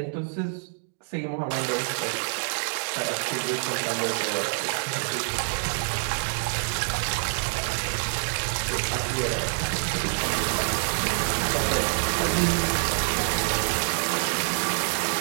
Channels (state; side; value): silent; left; digital silence